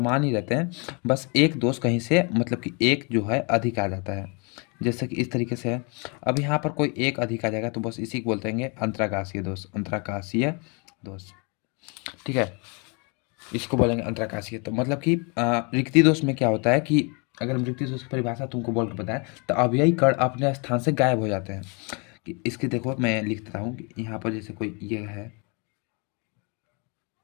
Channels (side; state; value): right; quieter; 33.1 dB